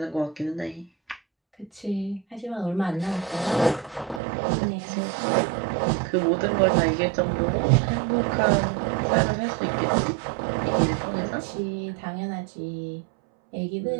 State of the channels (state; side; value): drops out; left; at 4.2 s